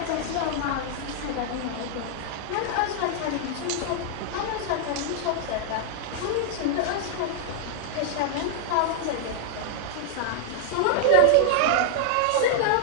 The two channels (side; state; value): both; different; correlation -0.01